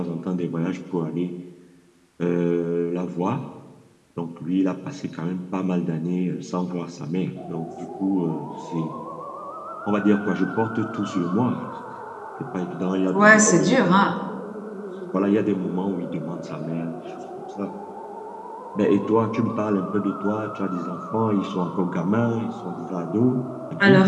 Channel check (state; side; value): identical; both; correlation 1.00